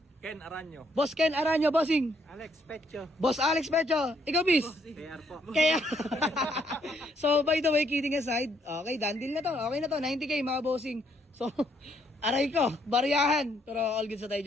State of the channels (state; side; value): normal; both; correlation 0.70